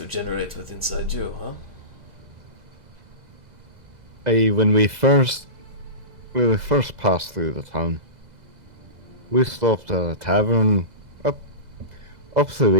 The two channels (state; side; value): late; left; 2.0 ms